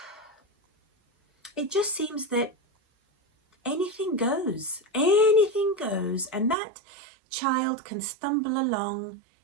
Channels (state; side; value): drops out; left; at 6.6 s